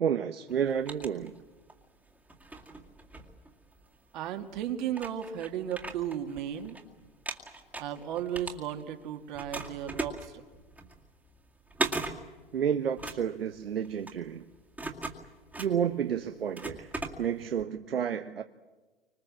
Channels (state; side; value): quieter; left; 7.1 dB